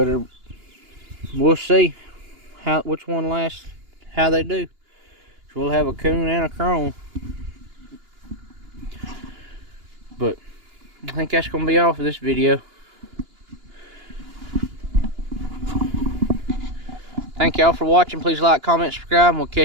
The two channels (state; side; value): late; left; 2.9 ms